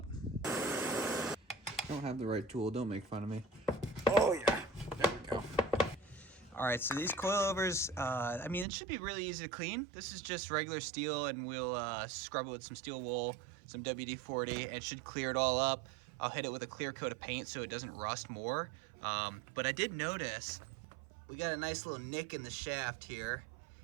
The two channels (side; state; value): left; drops out; at 8.7 s